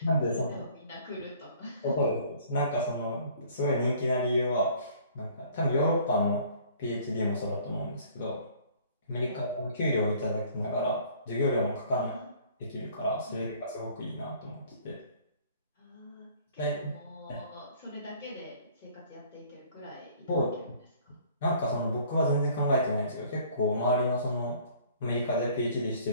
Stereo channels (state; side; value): inverted; both; correlation -0.54